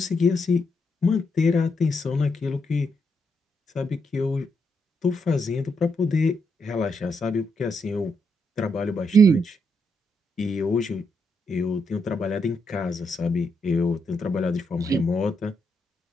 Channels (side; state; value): both; normal; correlation 0.80